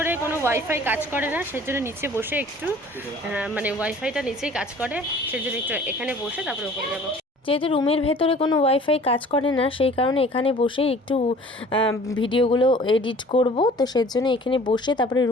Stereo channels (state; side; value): normal; both; correlation 0.49